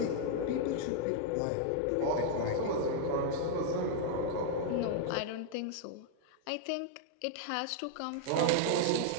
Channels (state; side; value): different; both; correlation 0.00